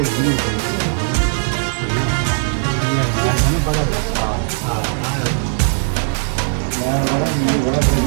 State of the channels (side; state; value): left; silent; digital silence